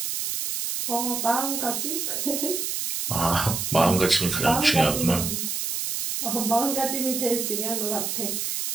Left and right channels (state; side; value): noise; right; hiss, 2 dB below the sound